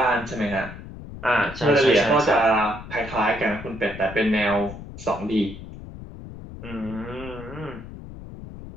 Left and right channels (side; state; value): left; noise; rumble, 13 dB below the sound